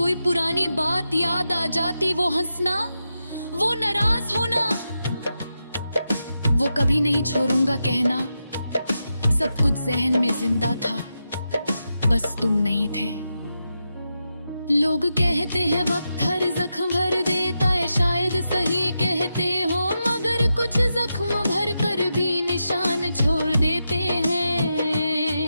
पुरानी बात याद आ जाती। वो हंसना, वो नाराज होना, वो कभी नहीं छोड़ूंगा कहना, सब कुछ जहन में जिंदा था, बस तुम नहीं थे। लोग कहते हैं वक्त हर जख्म भर देता है, शायद सही कहते हो, मगर कुछ जख्म भर कर भी निशान छोड़ देते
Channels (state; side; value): inverted; both; correlation -0.88